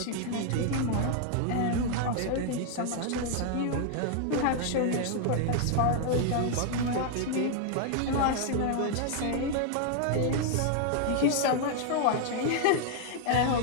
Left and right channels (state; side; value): different; both; correlation 0.00